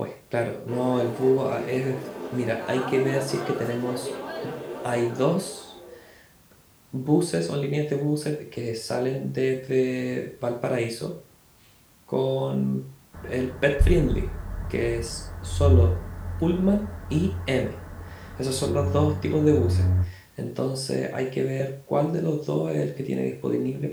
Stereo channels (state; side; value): identical; both; correlation 1.00